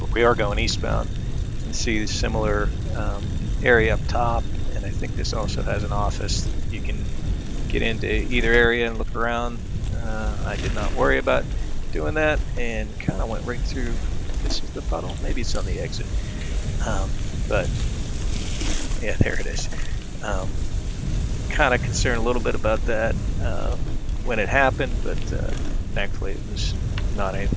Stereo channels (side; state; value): both; identical; correlation 1.00